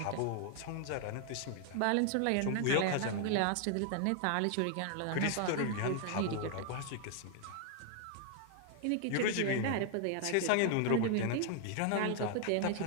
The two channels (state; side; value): different; both; correlation 0.00